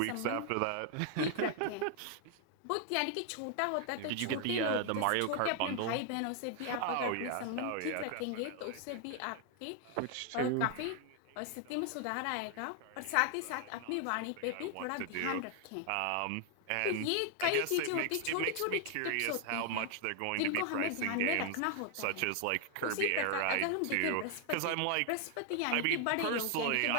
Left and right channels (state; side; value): different; both; correlation 0.00